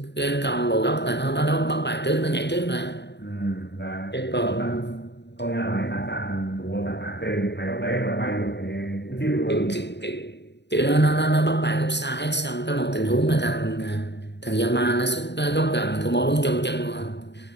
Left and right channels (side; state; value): right; late; 0.50 ms